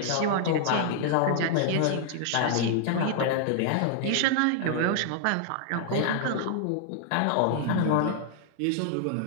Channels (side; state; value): both; different; correlation -0.01